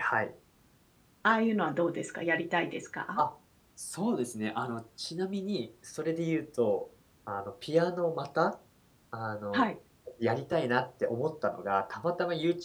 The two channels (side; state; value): both; identical; correlation 1.00